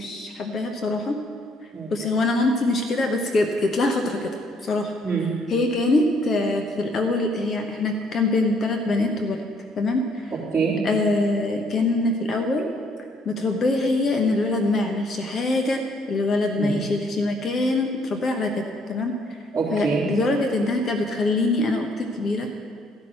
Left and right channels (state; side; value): normal; both; correlation 0.66